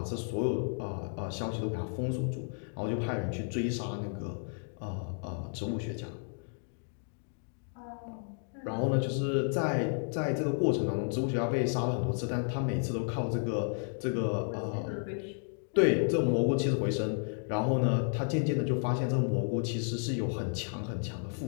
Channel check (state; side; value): silent; right; 56 dB below the other